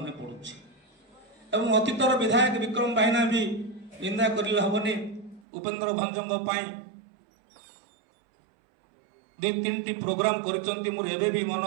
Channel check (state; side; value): drops out; left; at 5.4 s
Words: पड़ुछि एवं अतीतर विधायक विक्रम भाईना भी निंदा करले हबनी उपेन्द्र भंजर 2-3टी प्रोग्राम करचंती मोर एबे भी मन